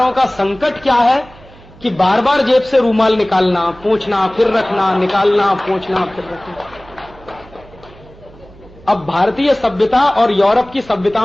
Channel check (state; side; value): noise; right; hum, 23 dB below the sound